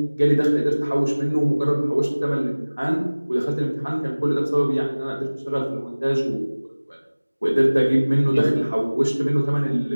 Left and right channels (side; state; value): both; inverted; correlation -1.00